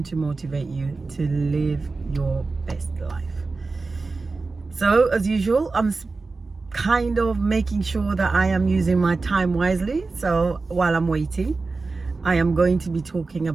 to motivate you to live your best life. So as usual, I'm kind of making sure that I am using my time wisely. So while I'm waiting, I am going to be talking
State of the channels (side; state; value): left; quieter; 3.9 dB